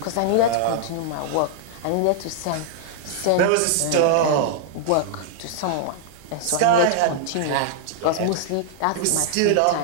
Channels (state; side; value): different; both; correlation -0.01